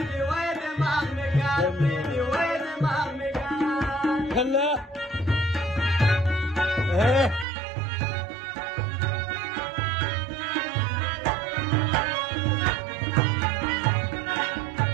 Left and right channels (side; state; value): left; drops out; at 7.5 s